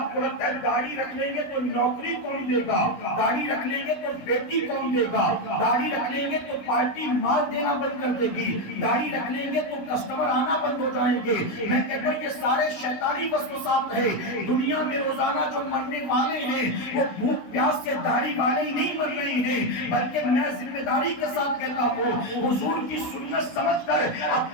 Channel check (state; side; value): late; right; 16 ms